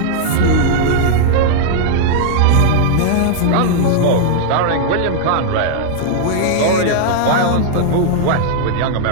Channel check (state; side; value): different; both; correlation -0.01